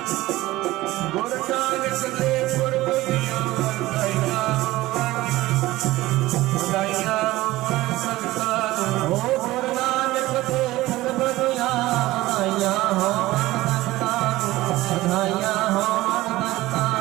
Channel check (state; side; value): quieter; left; 17.7 dB